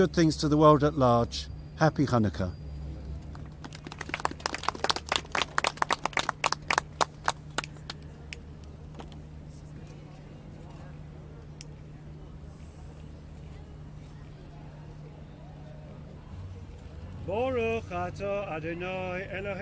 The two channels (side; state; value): both; identical; correlation 1.00